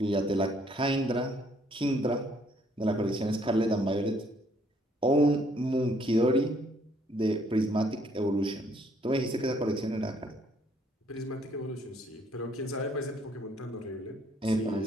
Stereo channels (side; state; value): both; normal; correlation 0.65